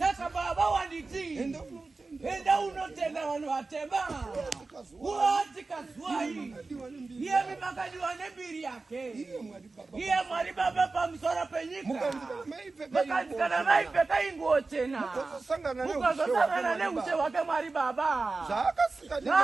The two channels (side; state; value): left; quieter; 3.7 dB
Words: Baba wanditi enda unotenda vanhu vatema uati kazuai iye mimakadiwa nembiri yake iye Mwari Baba pamusoro penyika makanzikana maipfeka inguo chena ukazosangana neushe wake Mwari Baba zvakasika